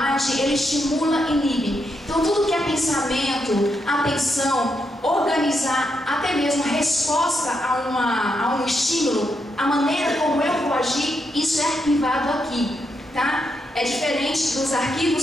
Ele estimula e inibe. Então tudo que é pensamento, atenção, organizar, até mesmo resposta a um estímulo, a maneira como eu vou agir, isso é arquivado aqui, tá? É diferente dos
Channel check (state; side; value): normal; both; correlation 0.81